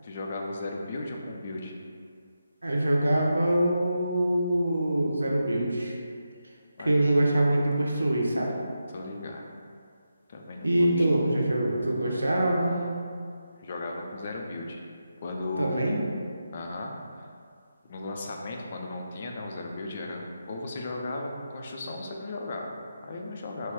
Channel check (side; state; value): both; inverted; correlation -0.88